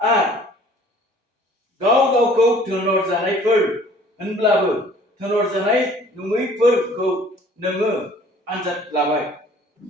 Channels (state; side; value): normal; both; correlation 0.53